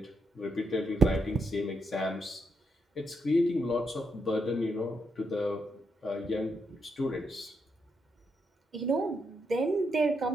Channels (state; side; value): normal; both; correlation 0.80